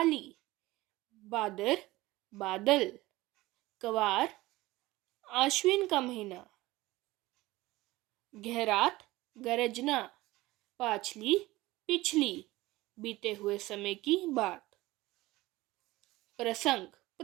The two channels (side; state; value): left; quieter; 19.0 dB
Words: बादर बादल, कवार आश्विन का महीना, गहरात गरजना, पाछली पिछली बीते हुए समय की बात। प्रसंग।